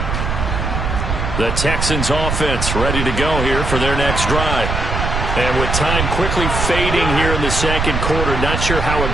The Texans offense ready to go here for their next drive. And with time quickly fading here in the second quarter, not sure how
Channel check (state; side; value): noise; right; rumble, 2 dB below the sound